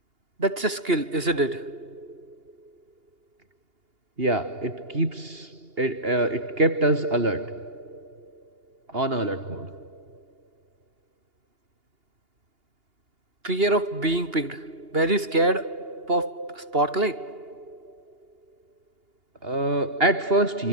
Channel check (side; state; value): left; late; 2.8 ms